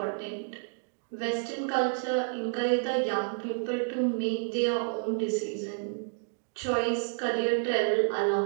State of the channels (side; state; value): left; silent; digital silence